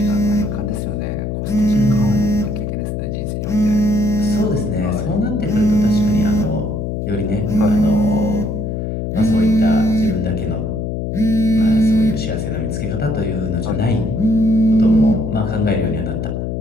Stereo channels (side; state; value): left; noise; hum, 3 dB below the sound